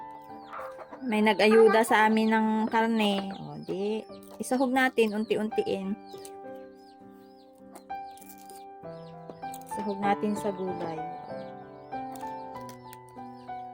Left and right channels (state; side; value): identical; both; correlation 1.00